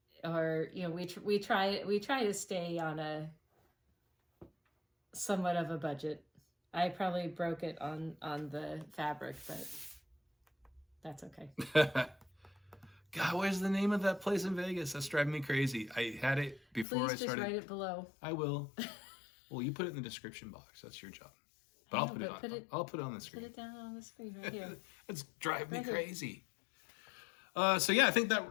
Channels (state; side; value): drops out; right; at 16.9 s